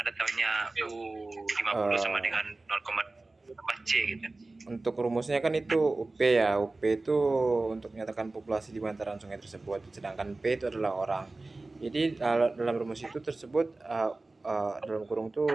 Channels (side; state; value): left; quieter; 3.2 dB